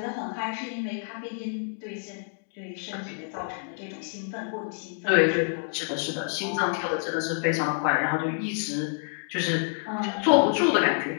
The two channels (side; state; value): right; silent; 60 dB below the other